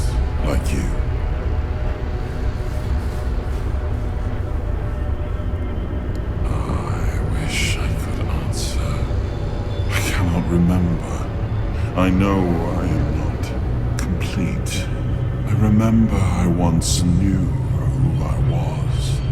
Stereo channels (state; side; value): identical; both; correlation 1.00